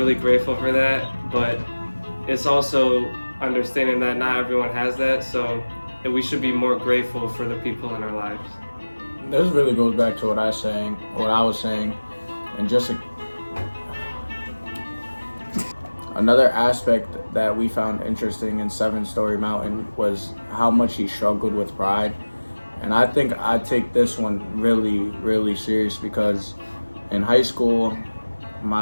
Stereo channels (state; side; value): inverted; both; correlation -1.00